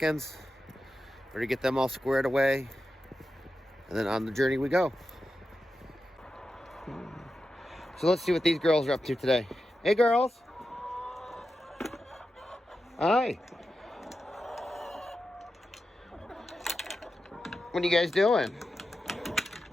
We're going to get them all squared away. And then on the journey we go. So let's see what these girls are up to today. Hey girls. Hi. What are you guys doing?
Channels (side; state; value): both; normal; correlation 0.90